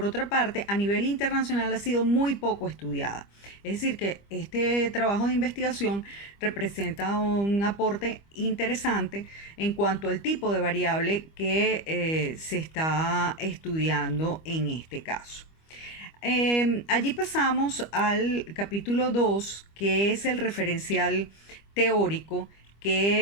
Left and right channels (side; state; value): right; late; 25 ms